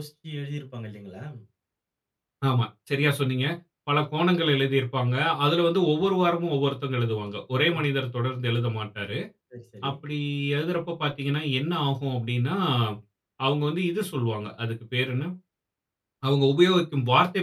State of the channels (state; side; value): identical; both; correlation 1.00